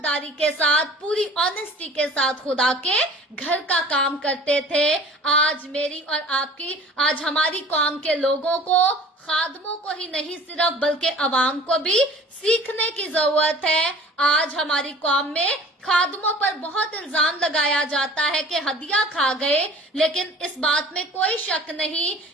के साथ, पूरी ऑनेस्टी के साथ खुदा के घर का काम करते थे। आज मेरी और आपकी, आज हमारी कौम के लोगों को, खादमों को ही नहीं सिर्फ बल्कि अवाम को भी सीखने की जरूरत है। आज हमारी कौम में खादमों पर बहुत इल्जाम लगाया जाता है कि हदिया खा गए, लेकिन इस बात में कोई शक नहीं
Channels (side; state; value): both; normal; correlation 0.46